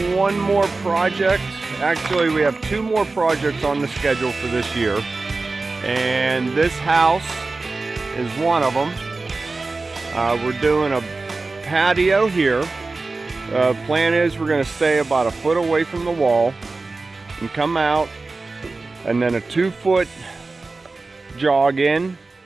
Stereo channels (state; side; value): quieter; left; 3.6 dB